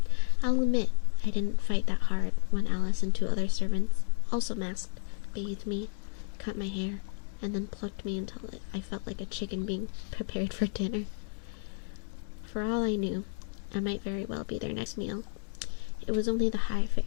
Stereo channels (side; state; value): right; silent; 57 dB below the other